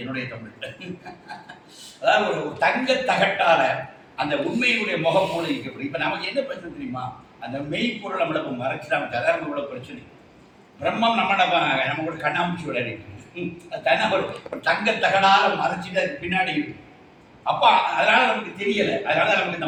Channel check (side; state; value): both; identical; correlation 1.00